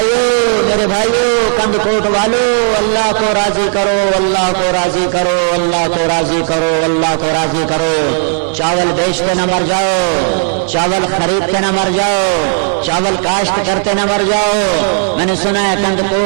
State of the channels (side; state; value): left; silent; 57 dB below the other